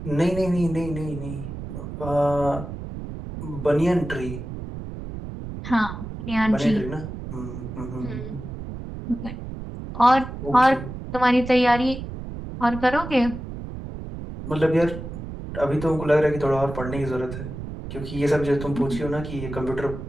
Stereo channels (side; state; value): right; noise; rumble, 9 dB below the sound